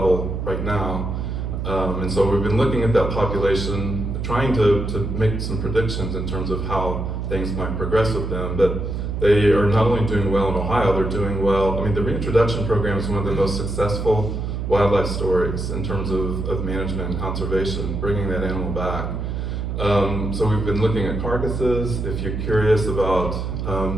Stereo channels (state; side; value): noise; right; hum, 3 dB below the sound